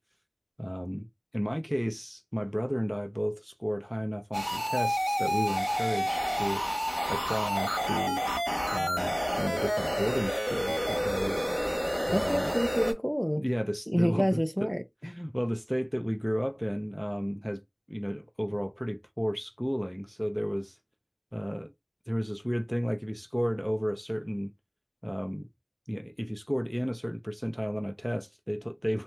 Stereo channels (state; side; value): identical; both; correlation 1.00